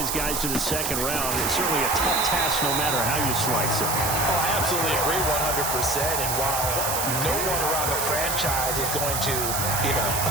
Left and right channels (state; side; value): noise; right; hiss, 1 dB below the sound